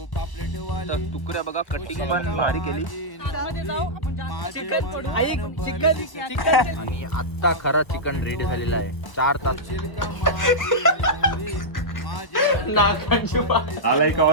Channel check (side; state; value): right; late; 1.0 ms